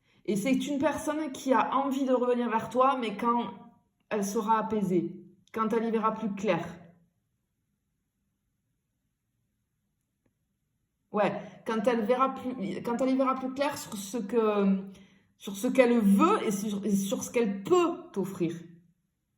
Et c'est une personne qui a envie de revenir vers toi, mais quand elle sera apaisée, quand elle y verra plus clair. Ouais, quand elle y verra plus clair sur ce qu'elle veut et sur ce qu'elle peut t'offrir.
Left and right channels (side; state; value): both; identical; correlation 1.00